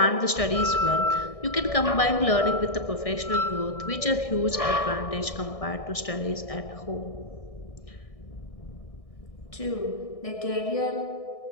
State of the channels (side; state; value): right; late; 1.6 ms